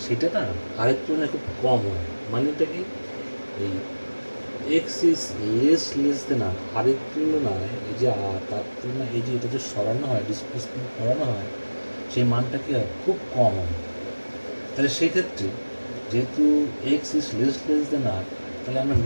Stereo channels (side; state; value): both; inverted; correlation -1.00